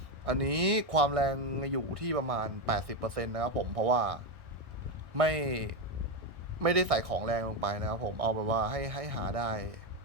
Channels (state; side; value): late; left; 1.4 ms